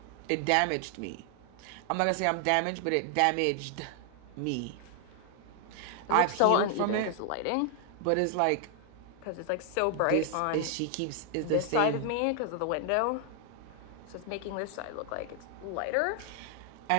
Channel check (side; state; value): both; different; correlation 0.00